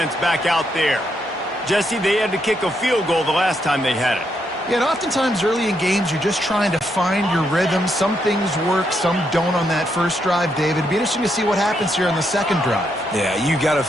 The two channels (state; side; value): normal; both; correlation 0.78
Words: back out there. Jesse, they had to kick a field goal the last time they had it. Yeah, and oftentimes early in games, you're just trying to find your rhythm. Some things work, some don't on that first drive, David. It'd be interesting to see what happens here on the second drive. Yeah, you got a